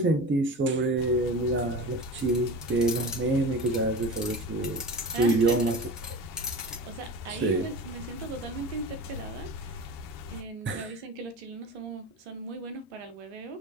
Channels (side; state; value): both; normal; correlation 0.32